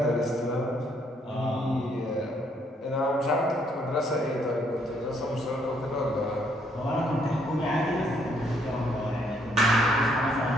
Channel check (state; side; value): normal; both; correlation 0.69